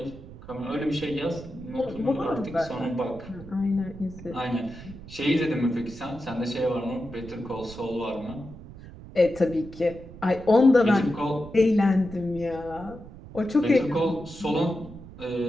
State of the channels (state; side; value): noise; right; rumble, 16 dB below the sound